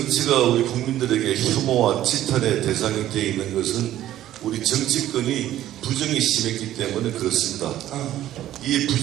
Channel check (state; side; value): quieter; left; 13.1 dB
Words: 우리 국민들에게 혐오와 지탄의 대상이 되어 있는 것은 우리 정치권이 부정이 심했기 때문에 그렇습니다.